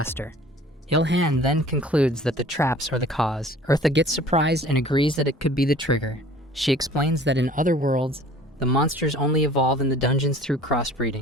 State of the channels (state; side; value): normal; both; correlation 0.48